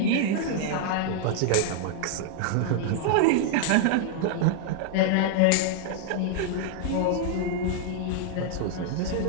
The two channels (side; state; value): both; different; correlation 0.00